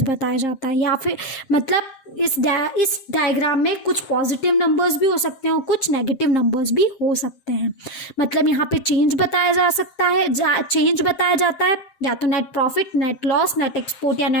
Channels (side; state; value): right; late; 7.5 ms